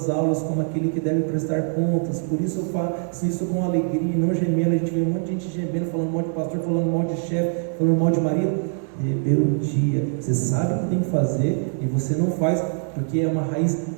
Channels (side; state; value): left; silent; 56 dB below the other